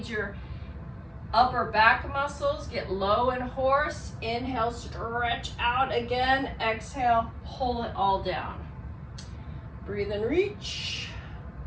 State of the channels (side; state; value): both; identical; correlation 1.00